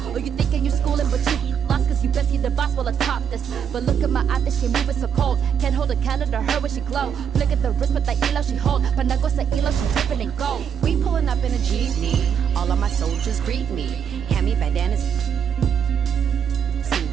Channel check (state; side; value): quieter; left; 7.9 dB